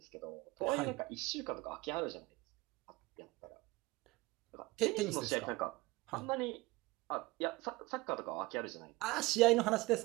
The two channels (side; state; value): left; quieter; 21.6 dB